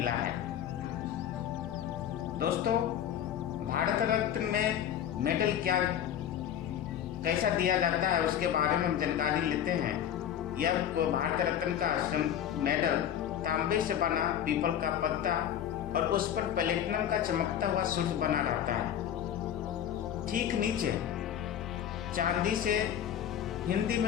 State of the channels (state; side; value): quieter; right; 10.0 dB